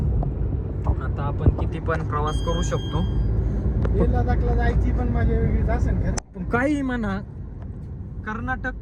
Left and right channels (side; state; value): both; identical; correlation 1.00